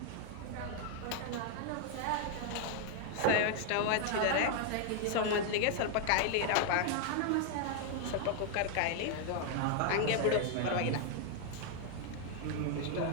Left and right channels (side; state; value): both; different; correlation 0.00